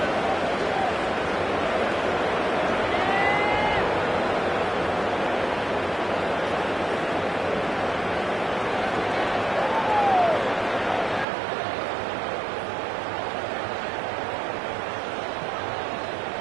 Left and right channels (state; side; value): drops out; left; at 11.2 s